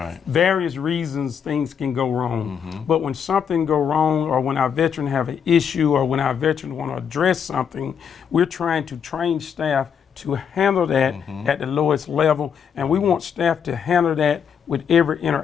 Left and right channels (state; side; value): quieter; right; 7.5 dB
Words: Various reasons things can go wrong. But when something go wrong, or when our veteran have an issue, or when our veteran want to address something, we're trying to train staff to handle that at the lowest level. And we want staff to handle that with every